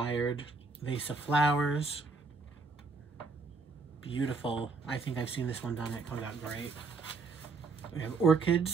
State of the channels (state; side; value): quieter; left; 4.1 dB